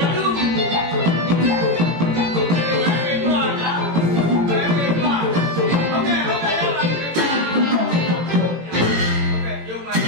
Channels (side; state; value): left; late; 18 ms